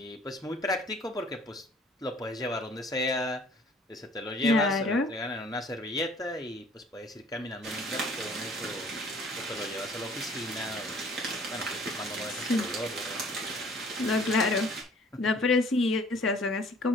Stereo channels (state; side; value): normal; both; correlation 0.54